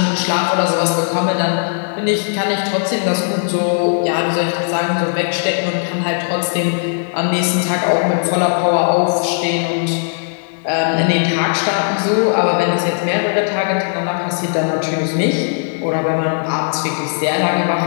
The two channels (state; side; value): silent; right; digital silence